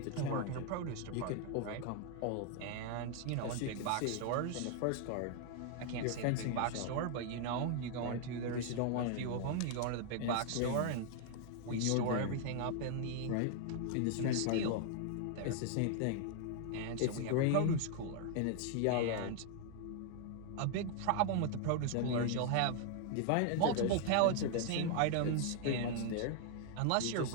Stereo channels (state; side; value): different; both; correlation 0.00